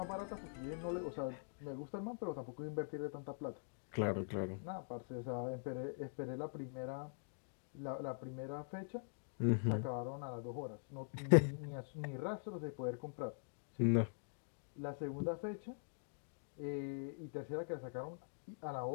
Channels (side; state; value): right; silent; digital silence